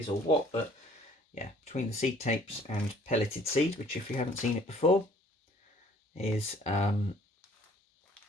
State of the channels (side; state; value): both; normal; correlation 0.56